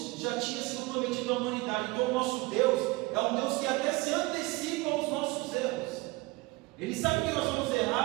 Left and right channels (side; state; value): left; quieter; 23.2 dB